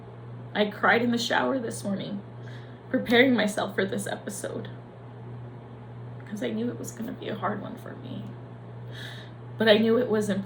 I cried in the shower this morning, preparing myself for this episode, because I knew it was gonna be a hard one for me. But I knew it was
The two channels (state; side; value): identical; both; correlation 1.00